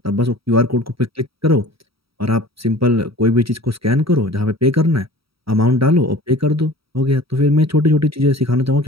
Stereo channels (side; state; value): left; late; 0.75 ms